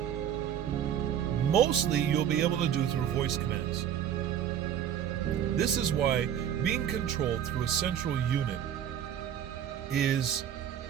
mostly you'll be able to do through voice commands. This is why being controlled through a central unit is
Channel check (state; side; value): quieter; left; 9.4 dB